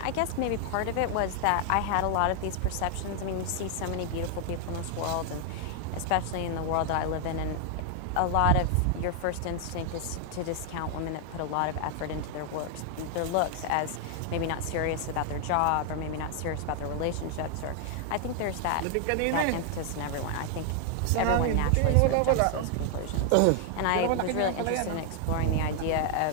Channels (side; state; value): both; different; correlation 0.00